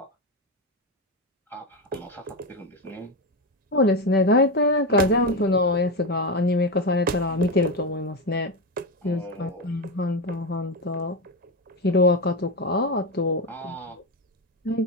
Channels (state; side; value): normal; both; correlation 0.13